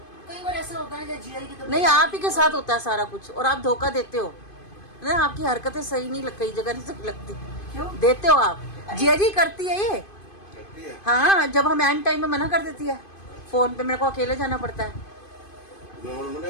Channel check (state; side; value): late; right; 2.5 ms